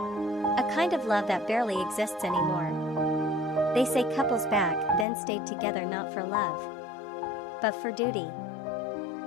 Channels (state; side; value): drops out; right; at 5.1 s